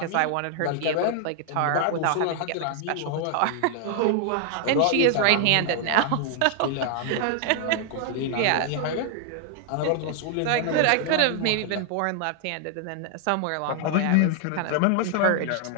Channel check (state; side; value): different; both; correlation 0.00